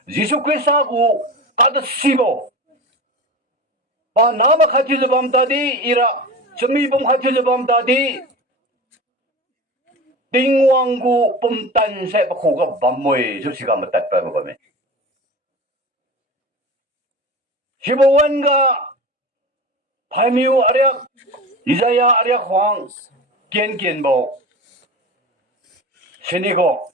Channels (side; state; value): both; normal; correlation 0.30